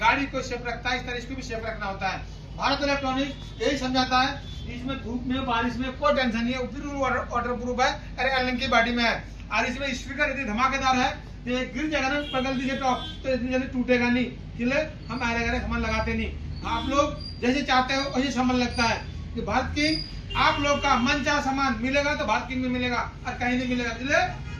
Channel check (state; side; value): identical; both; correlation 1.00